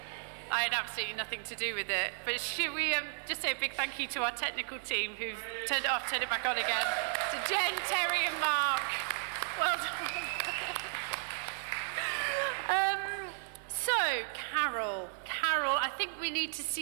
I had absolutely nothing to do with it. But should we just say a big thank you to our technical team who've turned it off, turned it back on again. To Jen, Terry and Mark. Well done. So, Carol, I think we need to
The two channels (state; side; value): silent; left; 55 dB below the other